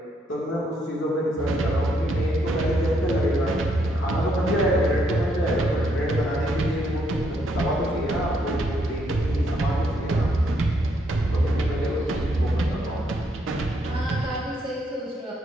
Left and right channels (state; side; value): normal; both; correlation 0.73